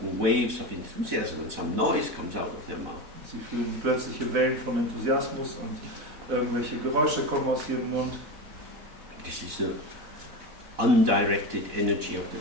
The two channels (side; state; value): left; late; 4.0 ms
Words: waves of enthusiasm when some noise comes out of their mouth. Sie fühlen plötzliche Wellen von Enthusiasmus und irgendwelche Geräusche kommen aus ihrem Mund. This is the undirected energy of the